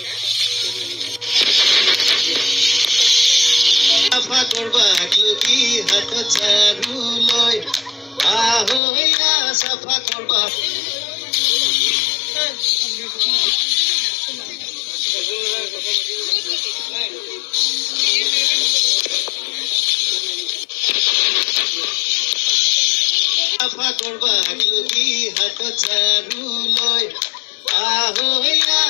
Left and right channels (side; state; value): right; drops out; at 8.8 s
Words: সাফা করবা কি হাত চারু লয় আহইয়া সাফা করবা সাফা করবা কি হাত চারু লয় আহইয়া